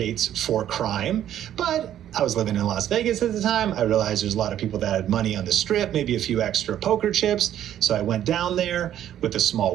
for crime, but I was living in Las Vegas at the time. I realized there's a lot of people that had money on the strip, maybe a few extra poker chips. So I went down there with a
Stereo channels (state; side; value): quieter; left; 11.2 dB